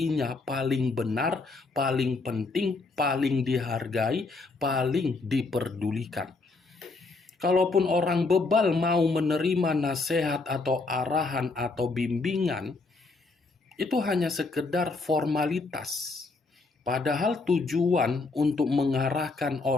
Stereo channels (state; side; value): quieter; right; 3.7 dB